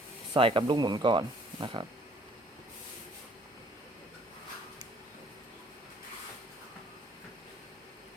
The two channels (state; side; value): normal; both; correlation 0.60